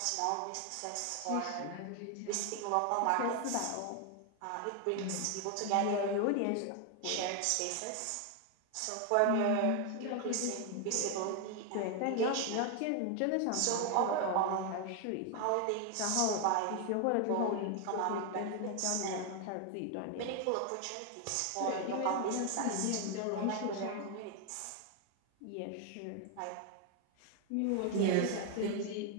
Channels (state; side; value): different; both; correlation 0.01